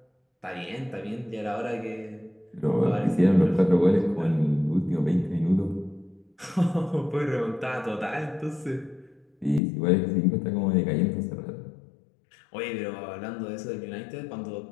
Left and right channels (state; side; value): drops out; right; at 9.6 s